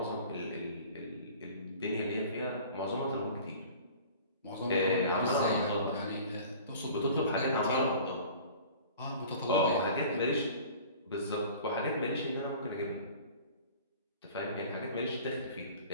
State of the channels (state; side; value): inverted; both; correlation -0.44